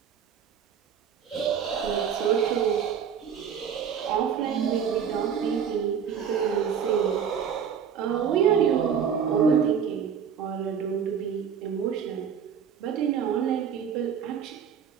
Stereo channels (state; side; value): quieter; left; 7.6 dB